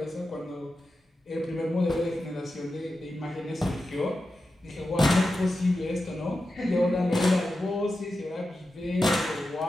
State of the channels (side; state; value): both; normal; correlation 0.91